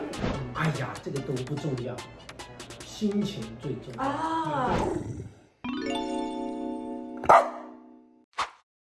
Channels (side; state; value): both; identical; correlation 1.00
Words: 哎呀，这个都不重要，心情最重要啊。